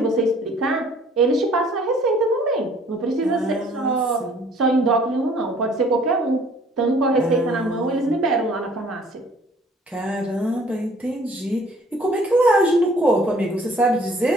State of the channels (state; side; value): normal; both; correlation 0.56